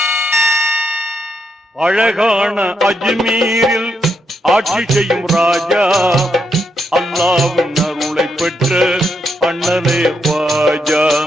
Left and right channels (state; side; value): normal; both; correlation 0.80